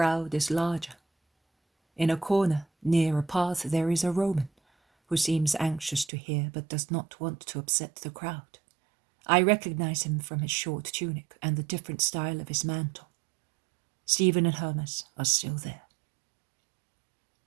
is larger. In a corner, near a path, there is a Roman, who seems anxious to hear but does not want to upset the crowd. I recognize him from his short tunic and the different style of his mantle. Stephen and Hermas are still there.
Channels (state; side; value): drops out; left; at 6.1 s